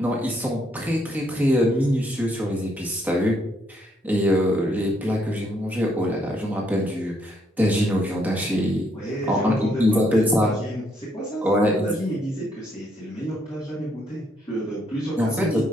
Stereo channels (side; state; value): both; normal; correlation 0.72